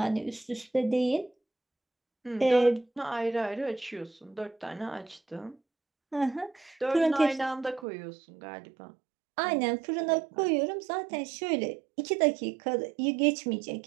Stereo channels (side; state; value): left; drops out; at 7.9 s